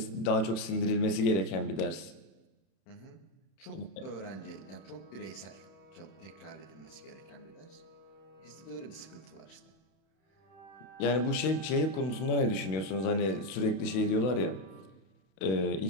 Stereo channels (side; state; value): right; late; 32 ms